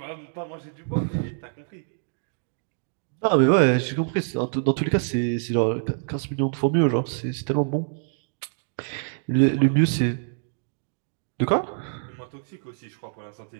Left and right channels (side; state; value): left; silent; digital silence